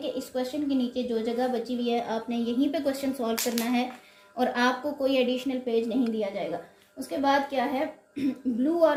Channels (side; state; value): both; identical; correlation 1.00